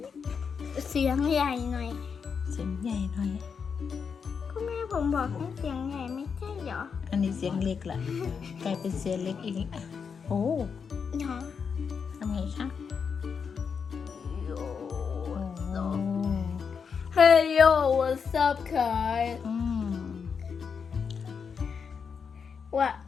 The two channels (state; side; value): quieter; right; 6.2 dB